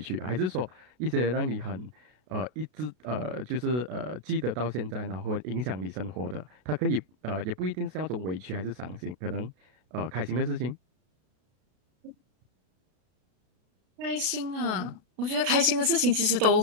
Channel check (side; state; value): left; late; 33 ms